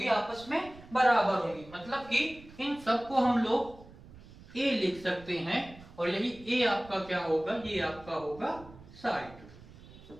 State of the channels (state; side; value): noise; right; rumble, 20 dB below the sound